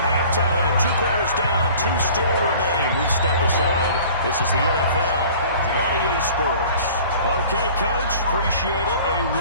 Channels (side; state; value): both; inverted; correlation -0.47